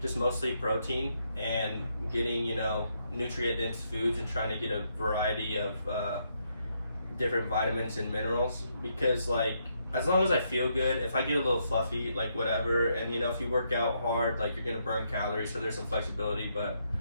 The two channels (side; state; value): both; inverted; correlation -0.76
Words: just mostly protein and getting, you know, nutrient dense foods and trying to get a variety of different vitamins and minerals. Because like, as long as I feel good, if I get a little fluffy, like whatever, and you know, if you work out hard, like you're going to burn calories, so there's some flexibility, but